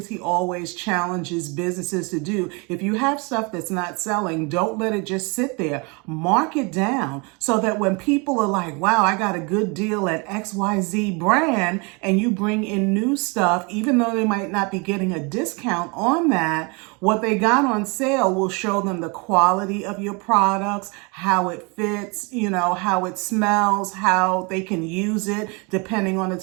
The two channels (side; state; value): left; quieter; 30.4 dB